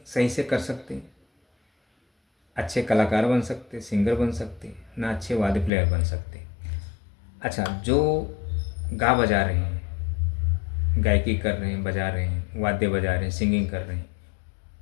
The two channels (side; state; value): right; drops out; at 5.7 s